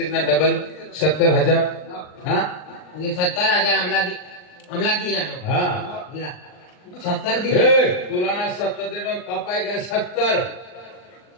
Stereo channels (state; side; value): late; right; 39 ms